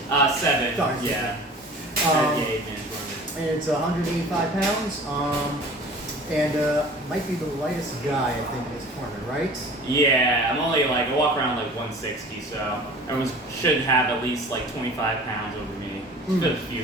7. Sorry, yeah. And it's 185 pounds, might be the lightest guy, I think, in this tournament, right? Yeah, I walk around 160, so everyone should have at least 25 pounds over me. There's a few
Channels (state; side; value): normal; both; correlation 0.43